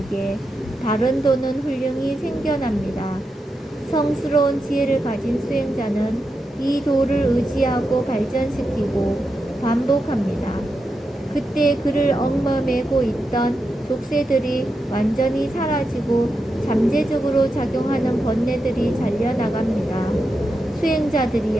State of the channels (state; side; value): normal; both; correlation 0.87